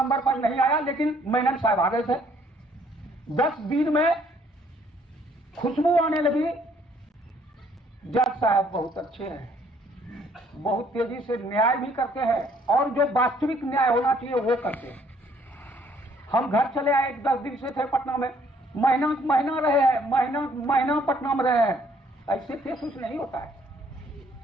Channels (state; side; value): normal; both; correlation 0.63